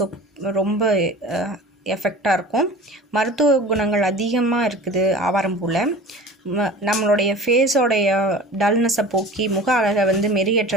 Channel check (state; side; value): normal; both; correlation 0.40